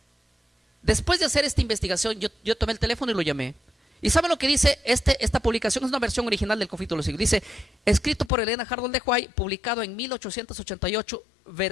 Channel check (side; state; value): right; drops out; at 8.3 s